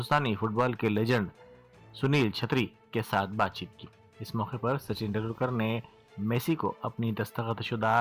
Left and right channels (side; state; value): both; identical; correlation 1.00